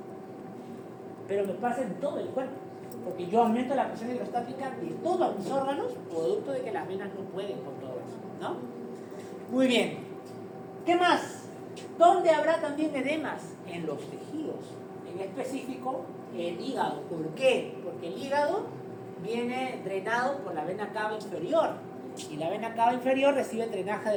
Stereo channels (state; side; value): identical; both; correlation 1.00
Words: Pero me pasa en todo el cuerpo, porque yo aumento la presión hidrostática de todos mis órganos, producto de que las venas no pueden con todo eso, ¿no? Muy bien. ¿Qué más? ¿Dónde habrá también edemas? En los tejidos. En específico, el hígado. ¿Por qué? Porque el hígado viene drenado por la vena cava inferior. Y la vena cava inferior recibe drenaje